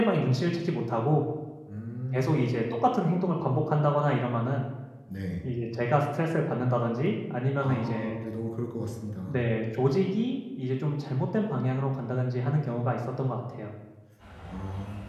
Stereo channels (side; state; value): both; identical; correlation 1.00